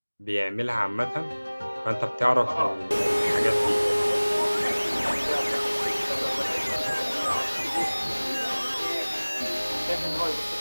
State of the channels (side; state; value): both; inverted; correlation -1.00